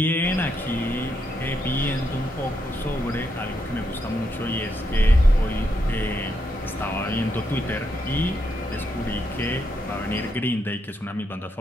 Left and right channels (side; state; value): both; normal; correlation 0.80